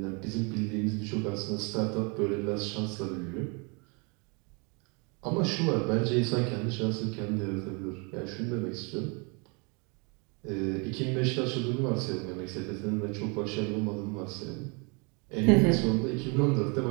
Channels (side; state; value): left; quieter; 32.7 dB